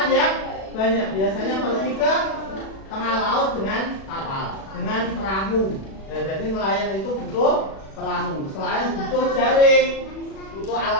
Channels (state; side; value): late; right; 36 ms